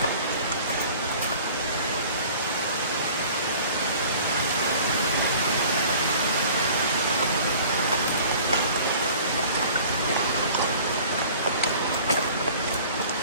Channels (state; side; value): inverted; both; correlation -0.47